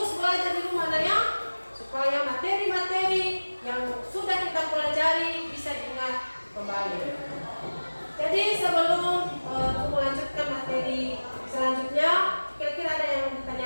kita pelajari bisa diingat kembali. Jadi sebelum melanjutkan materi selanjutnya, kira-kira ada yang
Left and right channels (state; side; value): inverted; both; correlation -1.00